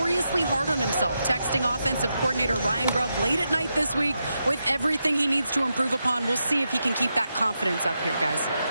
hard on himself, texting offensive coordinator Ryan Grubb late at night this week with everything he needs to improve upon. We'll see if he can keep that confidence up here, guys.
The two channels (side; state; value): both; inverted; correlation -0.86